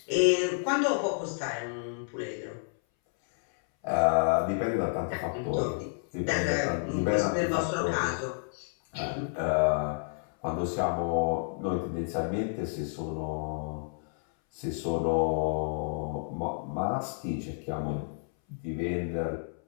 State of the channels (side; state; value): right; silent; 58 dB below the other